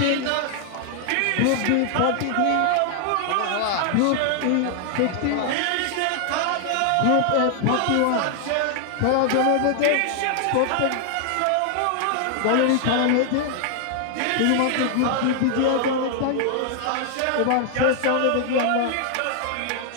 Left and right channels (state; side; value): different; both; correlation 0.00